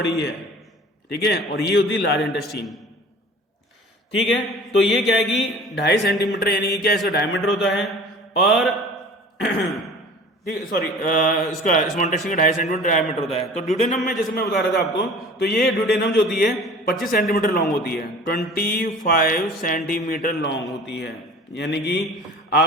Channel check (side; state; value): both; normal; correlation 0.43